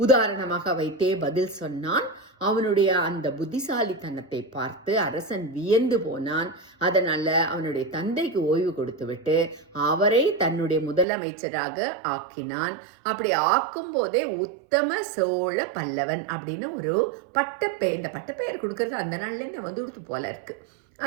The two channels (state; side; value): drops out; left; at 11.1 s